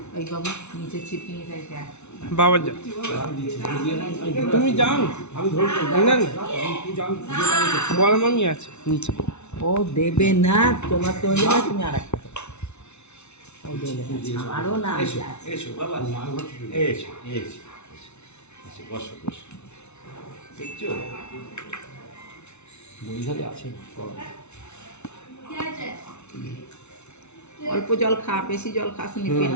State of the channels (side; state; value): right; late; 0.82 ms